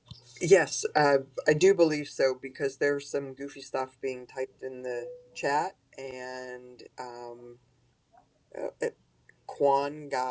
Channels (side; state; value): both; identical; correlation 1.00